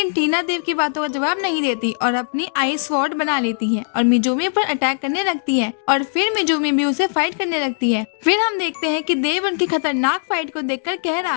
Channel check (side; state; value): right; silent; digital silence